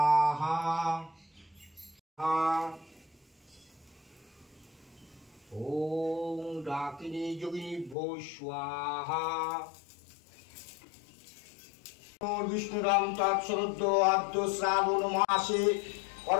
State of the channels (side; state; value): right; drops out; at 8.0 s